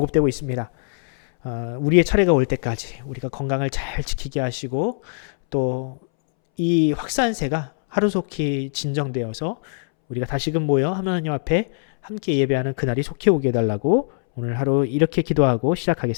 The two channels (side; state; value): right; silent; 64 dB below the other